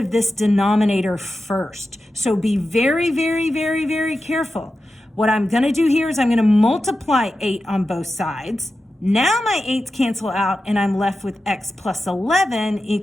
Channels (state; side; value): normal; both; correlation 0.92